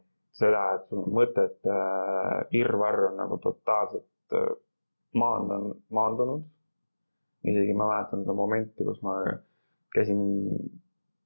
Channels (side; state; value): both; inverted; correlation -1.00